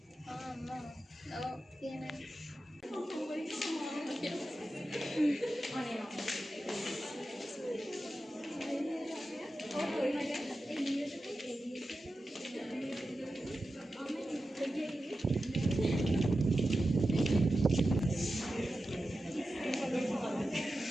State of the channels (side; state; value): both; normal; correlation 0.92